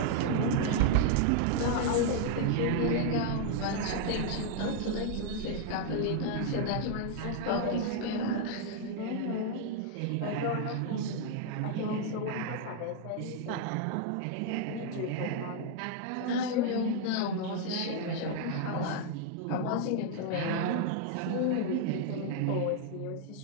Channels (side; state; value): both; different; correlation -0.01